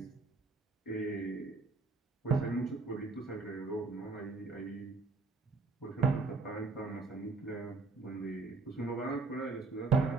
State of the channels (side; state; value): left; quieter; 4.0 dB